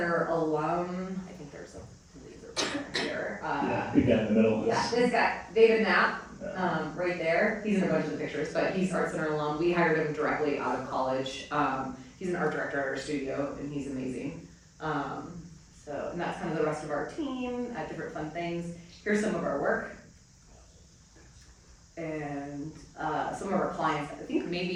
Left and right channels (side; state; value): both; identical; correlation 1.00